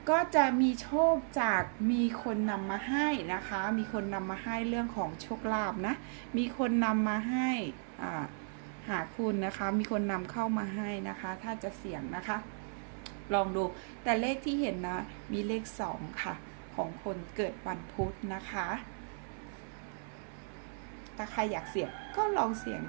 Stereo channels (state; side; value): silent; left; 54 dB below the other